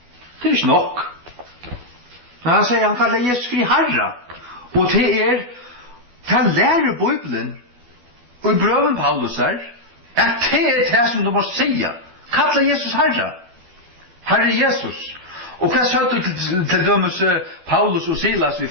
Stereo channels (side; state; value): left; late; 12 ms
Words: Det ikke nok. Men han sier, han kallar Jesus fri Herre. Og det lærer Bibelen og i brøven Paulus her at det som du må sige. Kalla Jesus Herre. Herre Jesus. Og hva sa du til dømes Paulus og Silas i